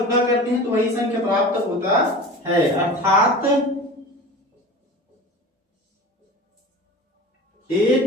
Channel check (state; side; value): normal; both; correlation 0.35